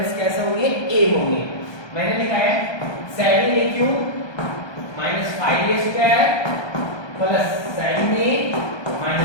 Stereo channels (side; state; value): right; late; 1.2 ms